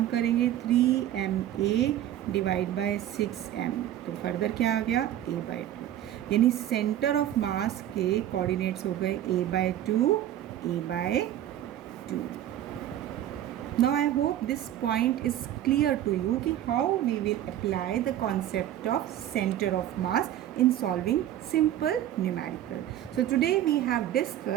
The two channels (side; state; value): left; quieter; 12.0 dB